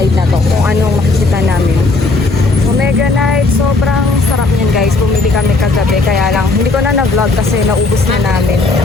na to kung anong makikita namin. Omega Night, sobrang sarap niya guys, bumili kami kagabi. Kaya lang, hindi ko na na-vlog kasi naubos na namin.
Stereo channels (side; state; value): right; quieter; 3.5 dB